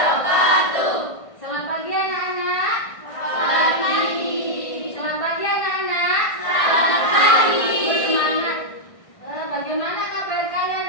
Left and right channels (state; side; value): late; right; 1.6 ms